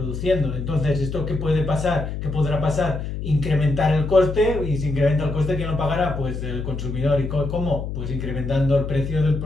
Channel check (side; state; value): left; noise; hum, 5 dB below the sound